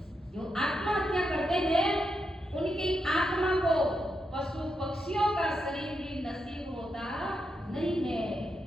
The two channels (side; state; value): both; normal; correlation 0.84